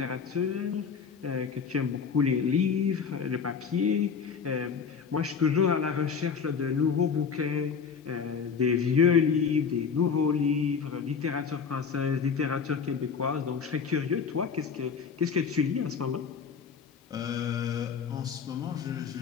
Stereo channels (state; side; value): quieter; right; 6.2 dB